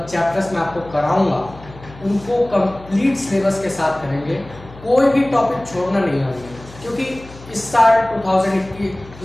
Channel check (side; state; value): left; noise; hum, 19 dB below the sound